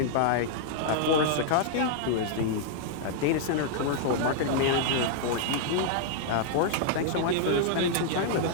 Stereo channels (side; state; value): both; different; correlation -0.01